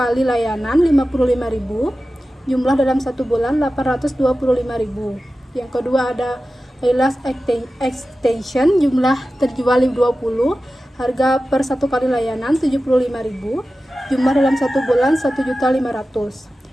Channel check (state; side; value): normal; both; correlation 0.94